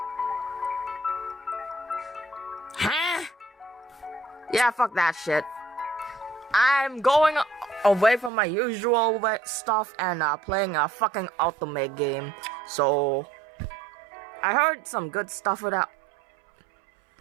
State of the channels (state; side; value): drops out; left; at 8.3 s